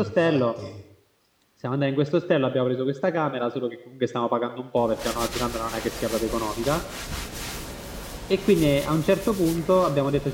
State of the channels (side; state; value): both; identical; correlation 1.00